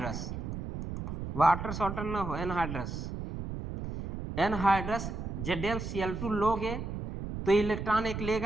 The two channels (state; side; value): noise; right; rumble, 6 dB below the sound